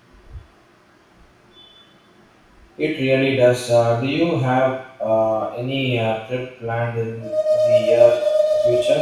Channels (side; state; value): both; identical; correlation 1.00